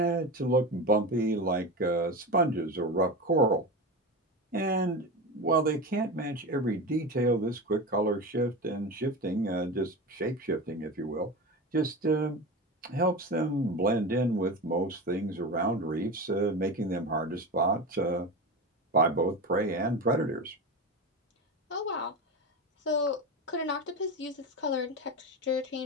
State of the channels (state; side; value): normal; both; correlation 0.23